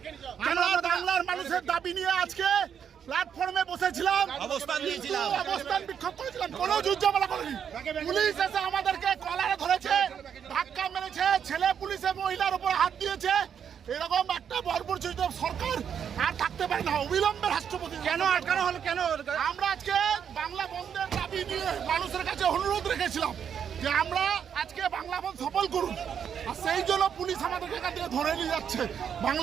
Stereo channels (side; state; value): left; quieter; 8.0 dB